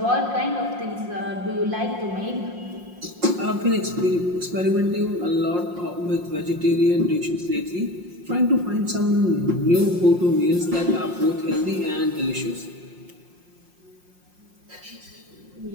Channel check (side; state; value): left; late; 5.6 ms